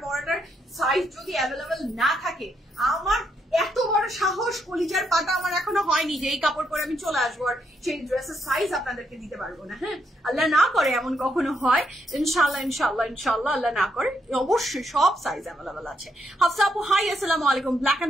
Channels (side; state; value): both; normal; correlation 0.77